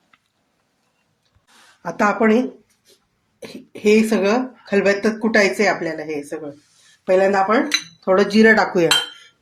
आता आपण हे सगळं खलबत्त्यात कुटायचंय आपल्याला. हे सगळं पहिल्यांदा आपण थोडं जिरं टाकूया.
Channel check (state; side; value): identical; both; correlation 1.00